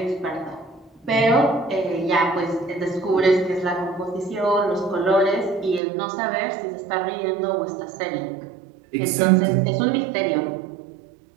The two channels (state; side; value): drops out; left; at 5.8 s